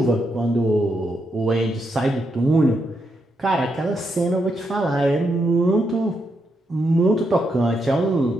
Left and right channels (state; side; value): normal; both; correlation 0.81